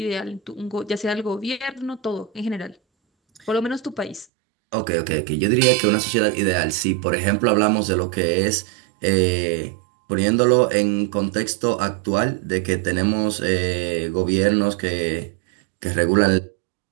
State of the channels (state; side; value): drops out; left; at 4.2 s